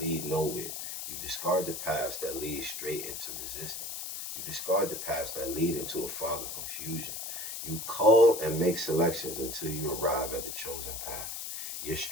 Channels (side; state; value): left; noise; hiss, 6 dB below the sound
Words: lead nowhere. You discard the paths that lead straight into resistance. You discard the paths that lead into a fog of confusion. You cull and make selections until you arrive at the chosen path. Your